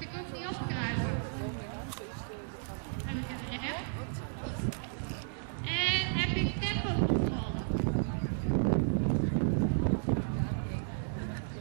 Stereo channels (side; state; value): left; silent; digital silence